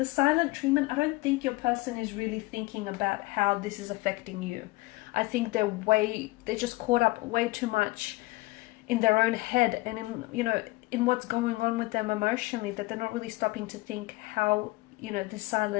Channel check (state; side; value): quieter; right; 21.6 dB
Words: silent treatment, I don't think your person is really thinking about how this is affecting you. I think they're just caught up way too much in their own head and in what's going on with them emotionally, that they're not really stopping to think how, this